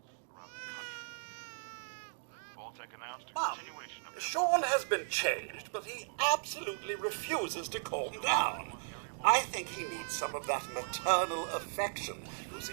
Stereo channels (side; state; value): left; silent; digital silence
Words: Mom, Sean has been changed, but he absolutely refuses to calm down. I think he needs some of that maternal affection you